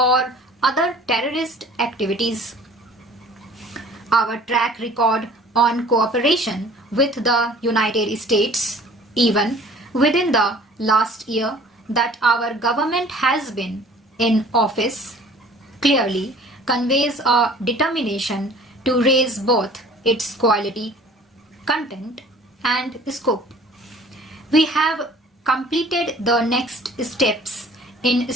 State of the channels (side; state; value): both; normal; correlation 0.49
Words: other terrorist activities. Our track record on cooperation with the United States, even within the last year that our government has been in office, clearly conveys a determination to raise both its quality, content, and scope. We have completed the next steps in